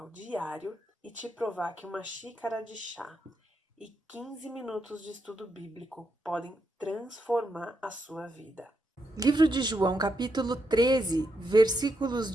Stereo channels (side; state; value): both; normal; correlation 0.82